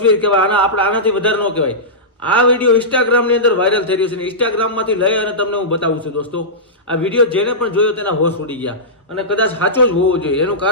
કહેવાય, આપણે આનાથી વધારે ન કહેવાય. આ વિડીયો ઇન્સ્ટાગ્રામની અંદર વાયરલ થઈ રહ્યો છે. ઇન્સ્ટાગ્રામમાંથી લઈ અને તમને હું બતાવું છું. દોસ્તો આ વિડીયો જેને પણ જોયો તેના હોશ ઉડી ગયા, અને કદાચ સાચો જ હોવો જોઈએ. એનું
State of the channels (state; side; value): normal; both; correlation -0.16